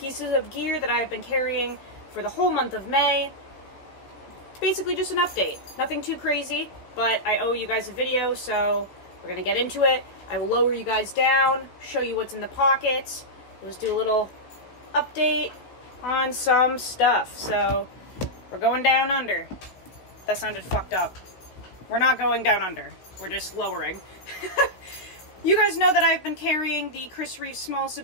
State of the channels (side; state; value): right; late; 16 ms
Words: of gear that I have been carrying for the whole month of May. Basically just an update. Nothing too crazy, but I owe you guys a video, so we're gonna get into it. I will lower you guys down, show you what's in the pockets. We'll just do a little update on some stuff. So, we're going down under. That sounded fucked up. We're not going down under. We're just lowering. You guys know that I've been carrying the Chris Reeve Small